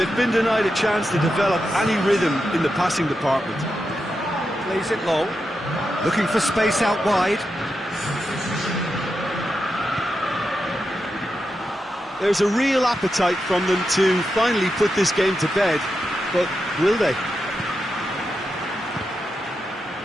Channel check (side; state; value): both; normal; correlation 0.87